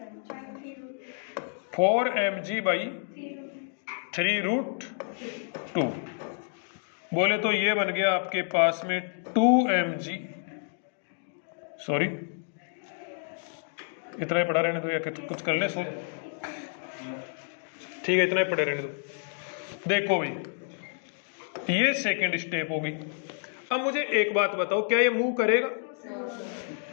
4mg/3√2, बोले तो ये बन गया आपके पास में 2mg, सॉरी इतना ही पढ़ा रहने दो या कुछ कर ले सो, ठीक है इतना ही पढ़े रहने दो। देखो भाई ये सेकंड स्टेप होगी। अब मुझे एक बात बताओ, क्या ये मूव करेगा,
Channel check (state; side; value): silent; right; 58 dB below the other